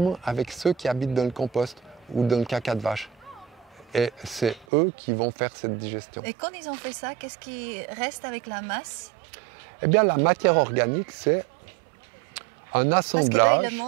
avec ceux qui habitent dans le compost ou dans le caca de vache. Et c'est eux qui vont faire cette digestion. Et quand ils ont fait ça, qu'est-ce qui reste avec la masse? Eh bien, la matière organique, c'est un assemblage. Parce que là, ils le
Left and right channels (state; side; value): drops out; left; at 4.7 s